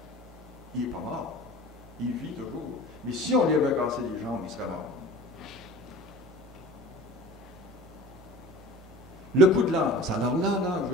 Il n'est pas mort. Il vit toujours. Mais si on lui avait cassé les jambes, il serait mort. Le coup de lance. Alors là,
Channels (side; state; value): both; normal; correlation 0.41